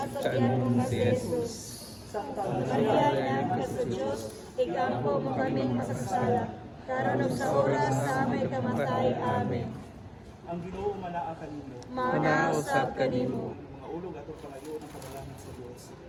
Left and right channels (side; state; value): both; identical; correlation 1.00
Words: sa tiyan mo nga si Jesus. Santa Maria, inahan ka sa Diyos, igampo mo kaming makasasala, karon ug sa oras sa amay kamatay. Amen. ang Ginoo manaa kanimo. Manausap kanimo. Mga ulog atong pangayo ng panalangin sa Dios.